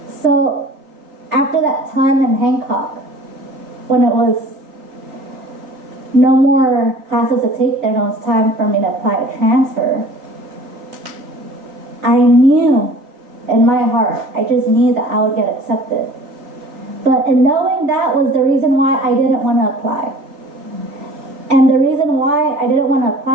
So after that time in Hancock, when it was no more classes to take there, and it was time for me to apply to transfer, I knew in my heart, I just knew that I would get accepted. But in knowing that was the reason why I didn't want to apply. And the reason why I didn't want to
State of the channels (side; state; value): left; late; 3.6 ms